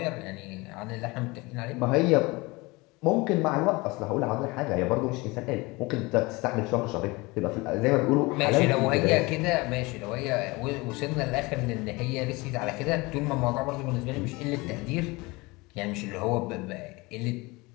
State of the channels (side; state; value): right; quieter; 23.9 dB